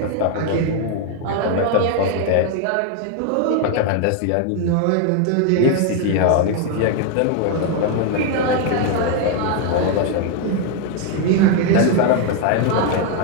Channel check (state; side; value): different; both; correlation 0.00